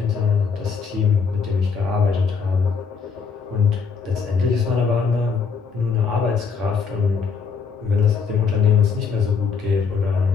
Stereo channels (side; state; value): right; quieter; 5.6 dB